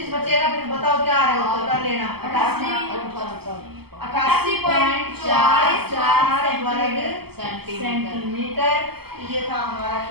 बचेगा, फिर बताओ क्या आ रहा है उत्तर, कर लेना। 88.44 वर्ग सेंटीमीटर, ये था हमारा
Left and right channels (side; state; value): left; late; 0.96 ms